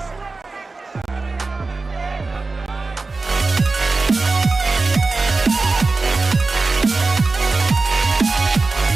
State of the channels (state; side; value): quieter; left; 3.7 dB